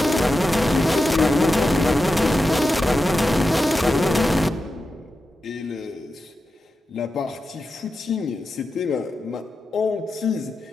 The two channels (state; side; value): normal; both; correlation 0.90